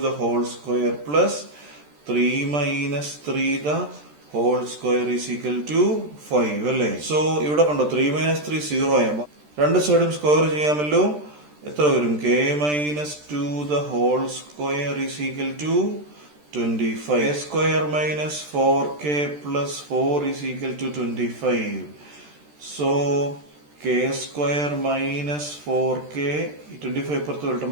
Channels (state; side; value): late; left; 13 ms